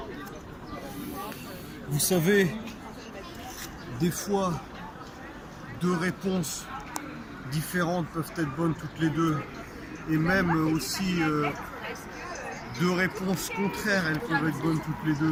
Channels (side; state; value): both; identical; correlation 1.00